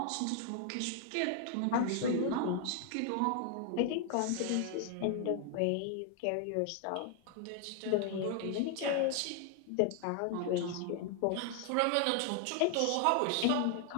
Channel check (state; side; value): different; both; correlation 0.00